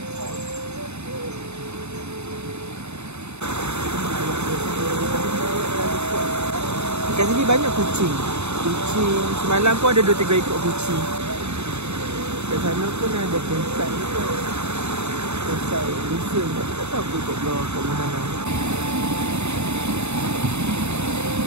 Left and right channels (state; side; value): late; left; 0.81 ms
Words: Kat sini banyak kucing. Semalam pun ada 2-3 ekor kucing. Kat sana pun ada campsite juga. Campsite Lusun. Tak tahu aku kat luar kat mana.